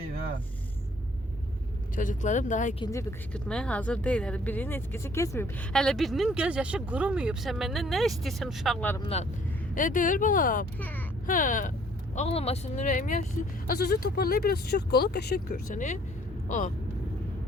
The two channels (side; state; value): both; normal; correlation 0.60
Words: ha. Çocuklarım daha ikinci bir qışqırtmaya hazır deyil. Hələ birinin etkisi keçməyib. Hələ birinin göz yaşı qurumuyub. Sən məndən nə istəyirsən uşaqlarımdan? Deyir balam. Hə. Ağlamasın ürəyim yaşlı. Az-azı toparlayıb biraz çox qolu qəşəng görsən.